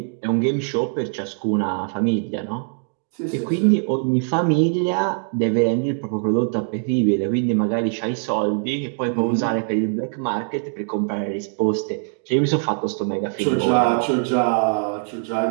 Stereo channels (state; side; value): silent; left; digital silence